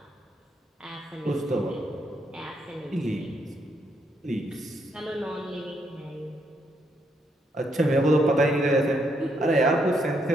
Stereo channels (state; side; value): normal; both; correlation 0.76